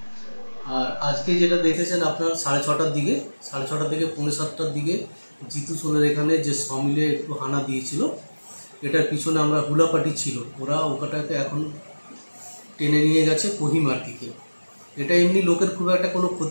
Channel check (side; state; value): both; inverted; correlation -1.00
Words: আর আজকে যেটা দেখেছেন আপনার 6:30টার দিকে, 6:30 থেকে 6:45টার দিকে জিতু সোলের এখানে যে সমিলে একটু হানা দিয়েছিল, এটার পিছনে আমরা হুলাপাটি ছিল, ওরা ওটাকে এখন টেনে নিয়ে গেছে কোহিমার দিকে। এটা এমনি লোকের খুব একটা কোনো